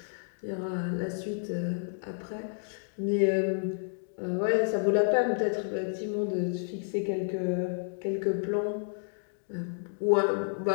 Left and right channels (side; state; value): right; silent; digital silence